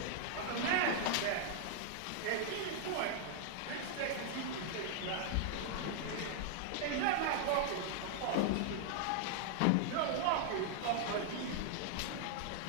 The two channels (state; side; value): different; both; correlation 0.00